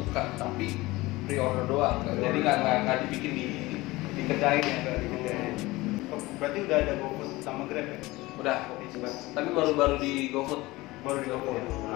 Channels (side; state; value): right; quieter; 20.3 dB